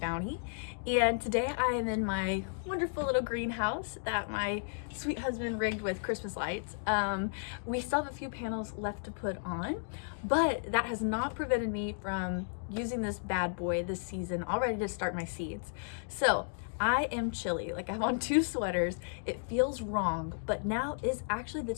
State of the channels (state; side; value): silent; right; digital silence